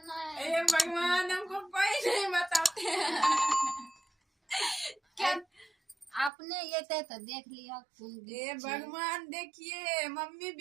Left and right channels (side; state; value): left; drops out; at 6.3 s